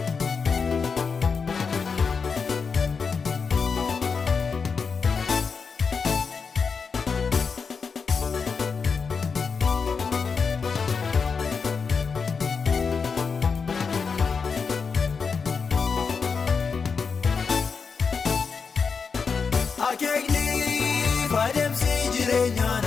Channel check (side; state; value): right; quieter; 5.4 dB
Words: Akeekniif adeemsi jireenyaa